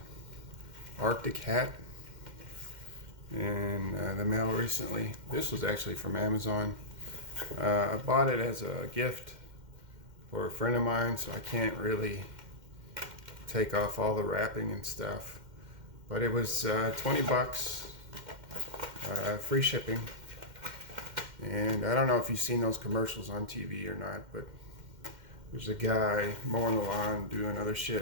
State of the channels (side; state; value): left; late; 2.1 ms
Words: Arctic hat in the mail recently. This was actually from Amazon. I bought it as a gift for a friend of mine, so I can't really take off all the wrapping and stuff. But it was 20 bucks, free shipping. And I don't know if you've seen those commercials on TV or not, but there's a guy mowing the lawn, doing other